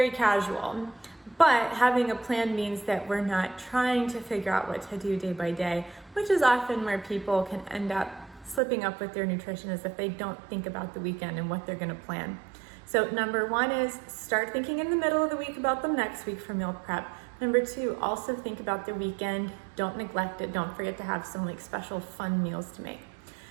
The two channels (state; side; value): drops out; left; at 8.6 s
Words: casual. But having a plan means that we're not trying to figure out what to do day by day, which is often where people can end up slipping up with their nutrition, is if they don't think about the weekend and what they're gonna plan. So number one is start thinking in the middle of the week about the next week for meal prep. Number two, also think about the weekend. Don't neglect it. Don't forget to have some like special fun meals to make.